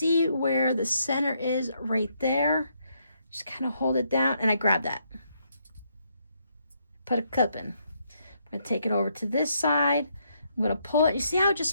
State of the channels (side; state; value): both; inverted; correlation -0.75